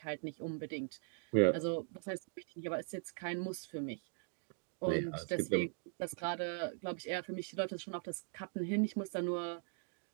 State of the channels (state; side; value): silent; left; 51 dB below the other